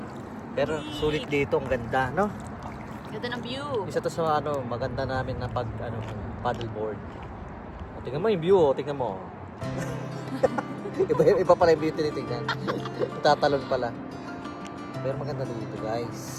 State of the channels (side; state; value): both; identical; correlation 1.00